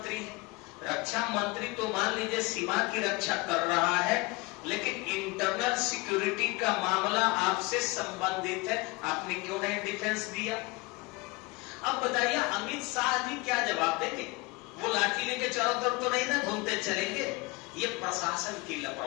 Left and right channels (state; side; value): quieter; right; 24.6 dB